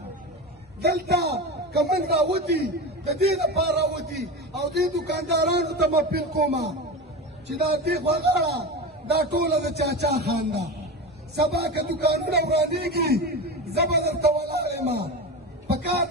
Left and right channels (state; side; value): normal; both; correlation 0.24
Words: دلته که موږ راوتي د دې لپاره راوتي او دې دوکاندارانو ته مه اپیل کومه چې دا دې غوغاړه دا ټوله د چاچا خان ده سبا که دوکانونه ورانېږي زه به درته ولاړ یم پکار